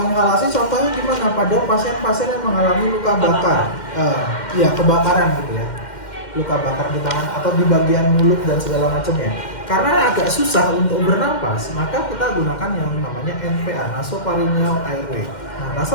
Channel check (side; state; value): right; late; 2.1 ms